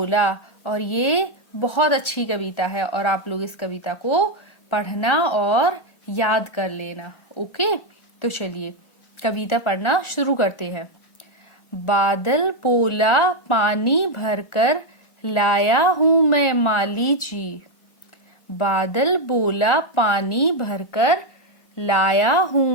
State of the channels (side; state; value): right; late; 1.4 ms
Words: और ये बहुत अच्छी कविता है और आप लोग इस कविता को पढ़ना और याद कर लेना। ओके, तो चलिए कविता पढ़ना शुरू करते हैं। बादल बोला पानी भरकर लाया हूँ मैं माली जी। बादल बोला पानी भरकर लाया हूँ